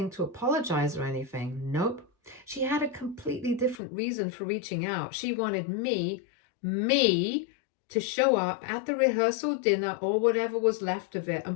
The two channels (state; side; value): drops out; right; at 3.8 s